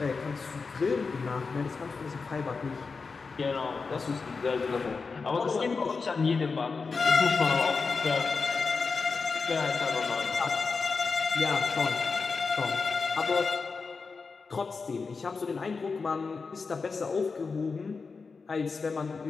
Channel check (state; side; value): quieter; right; 4.6 dB